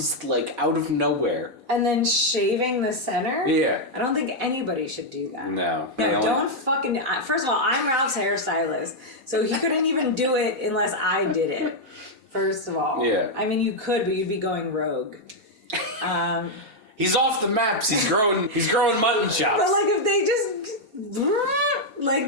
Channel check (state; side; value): late; left; 4.0 ms